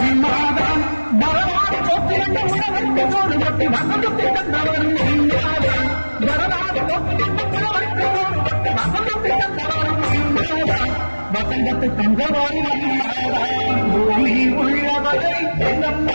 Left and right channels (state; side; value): inverted; both; correlation -1.00